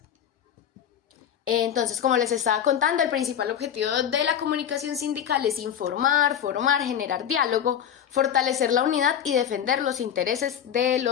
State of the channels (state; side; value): quieter; right; 9.3 dB